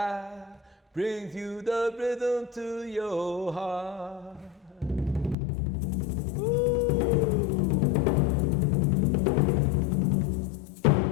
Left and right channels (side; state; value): right; drops out; at 5.4 s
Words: brings you the rhythm to your heart.